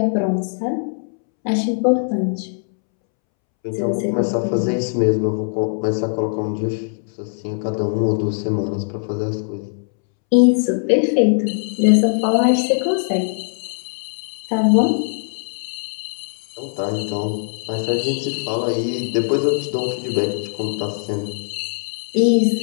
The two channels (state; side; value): silent; right; 65 dB below the other